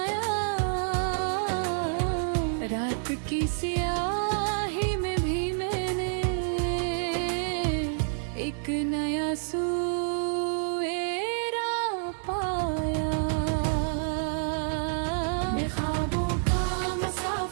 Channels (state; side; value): silent; left; 59 dB below the other